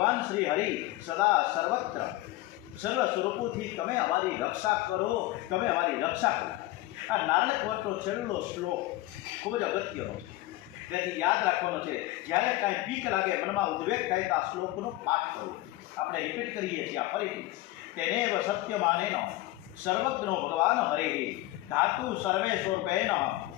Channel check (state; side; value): quieter; right; 17.7 dB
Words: શ્રી હરિ સદા સર્વત્ર સર્વ સ્વરૂપોથી તમે અમારી રક્ષા કરો, તમે અમારી રક્ષા કરો. આ નારાયણ કવચનો છેલ્લો શ્લોક ખૂબ જ અગત્યનો છે. તેથી યાદ રાખવાનો છે. જ્યારે કાંઈ બીક લાગે, મનમાં ઉદ્વેગ થાય તો આ શ્લોકનો પાઠ કરો. આપણે રિપીટ કરીએ છીએ આ ફરીથી. તેનેવ સત્યમાનેન સર્વજ્ઞો ભગવાન હરે ધાતુ સર્વે સ્વરૂપેણ